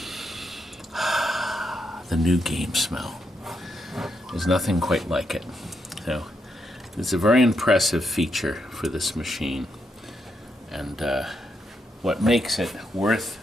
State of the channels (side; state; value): both; normal; correlation 0.80